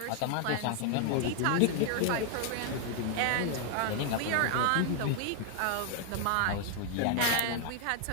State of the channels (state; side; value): different; both; correlation 0.00